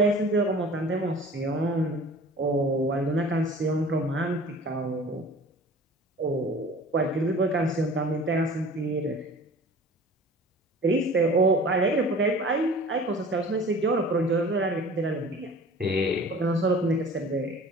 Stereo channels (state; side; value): normal; both; correlation 0.44